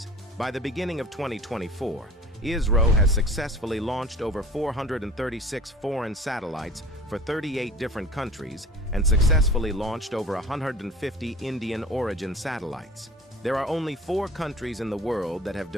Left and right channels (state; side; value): normal; both; correlation 0.42